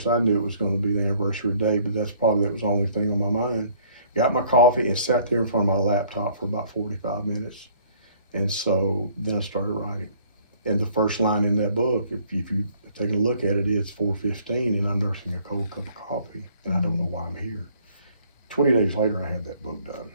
I knew it was going to be the anniversary day, but that was the only thing on my mind. Got my coffee and sat there in front of my laptop for about 45 minutes. And so then I started writing. And the first line in that book, if you take a look at it, it's 4:15 and I'm nursing a cold cup of coffee and I don't know why I'm here. 20 days later, I had that book done.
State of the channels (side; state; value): both; inverted; correlation -0.59